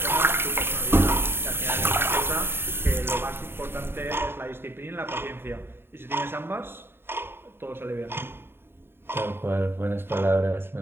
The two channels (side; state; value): left; late; 0.11 ms